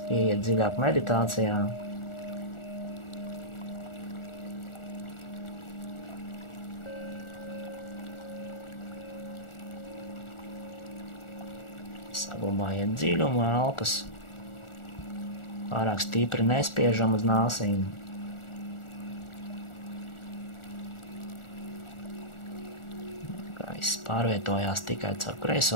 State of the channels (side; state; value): right; late; 1.4 ms